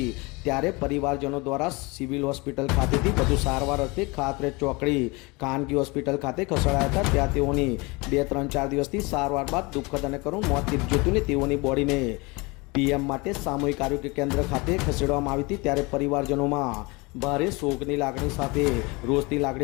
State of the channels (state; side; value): quieter; right; 26.0 dB